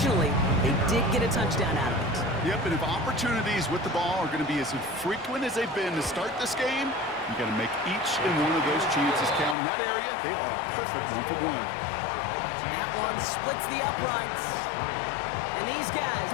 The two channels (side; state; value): right; drops out; at 9.6 s